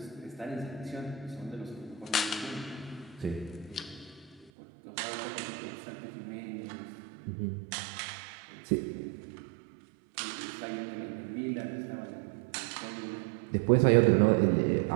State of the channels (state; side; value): drops out; left; at 4.5 s